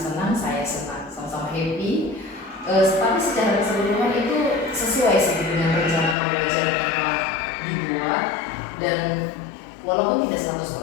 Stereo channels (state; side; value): drops out; right; at 6.2 s